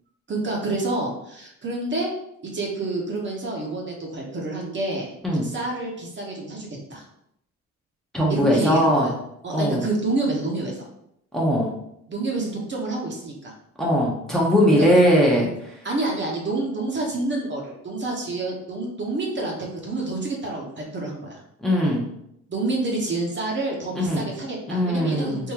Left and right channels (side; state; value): both; normal; correlation 0.48